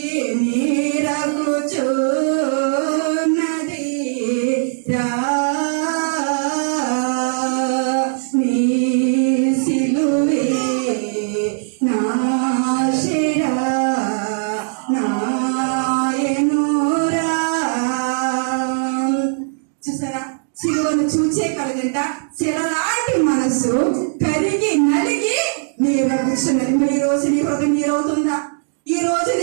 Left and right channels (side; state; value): left; silent; 66 dB below the other